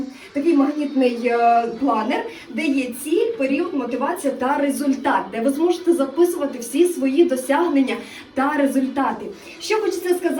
такий магнітний планер, де є ціль, період, мотивація та результат, де ви зможете записувати всі свої досягнення та результати. Що хочеться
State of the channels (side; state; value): both; identical; correlation 1.00